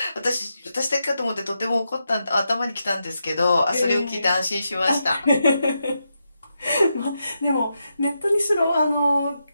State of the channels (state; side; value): inverted; both; correlation -0.85